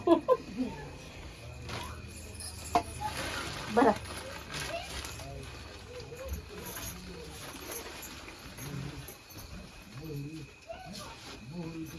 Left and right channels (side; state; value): both; identical; correlation 1.00